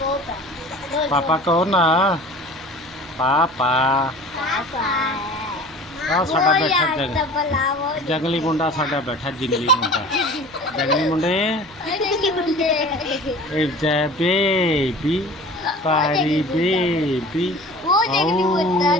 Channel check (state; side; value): noise; right; hum, 24 dB below the sound